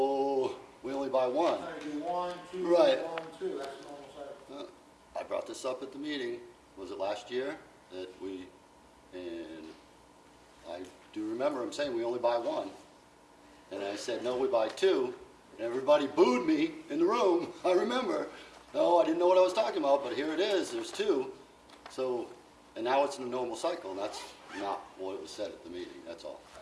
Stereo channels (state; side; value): identical; both; correlation 1.00